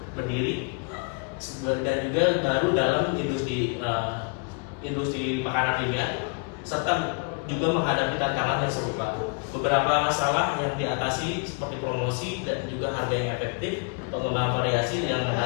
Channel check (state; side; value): quieter; right; 36.4 dB